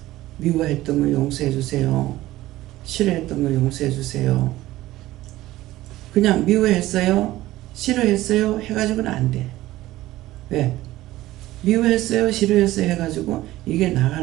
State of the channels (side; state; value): left; quieter; 16.3 dB